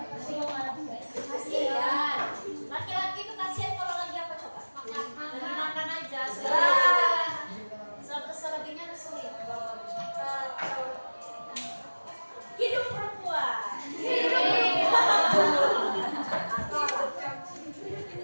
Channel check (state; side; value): inverted; both; correlation -1.00